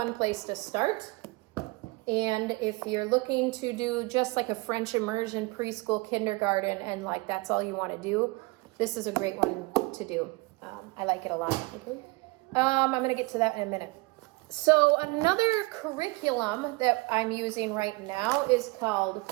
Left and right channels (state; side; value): quieter; left; 24.9 dB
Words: place to start. And if you're looking to do just like a French immersion, preschool, kindergarten, and like that's all you want to do, this is a great one to do. I like it a lot. I'm going to get to that in a minute. So another curriculum that I'm using right now is called